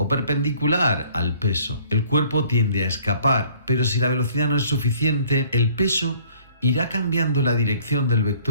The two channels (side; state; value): both; inverted; correlation -0.57